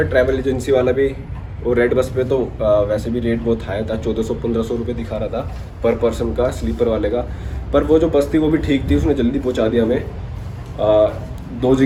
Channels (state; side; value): identical; both; correlation 1.00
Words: ट्रैवल एजेंसी वाला भी। और रेड बस पे तो वैसे भी रेट बहुत हाई था, 1400-1500 रुपये दिखा रहा था पर पर्सन का, स्लीपर वाले का। पर वो जो बस थी वो भी ठीक थी, उसने जल्दी पहुंचा दिया हमें। 2